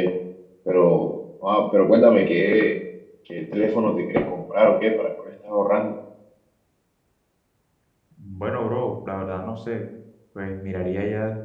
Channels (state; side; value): identical; both; correlation 1.00